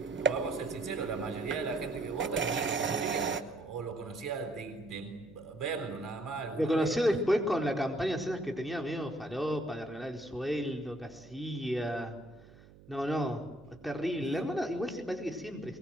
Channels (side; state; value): right; noise; hum, 22 dB below the sound